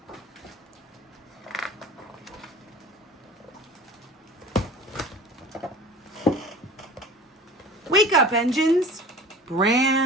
Wake up, engines.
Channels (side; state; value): both; normal; correlation 0.40